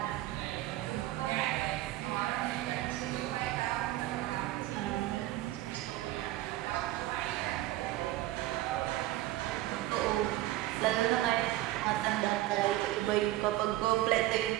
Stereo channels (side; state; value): left; quieter; 16.0 dB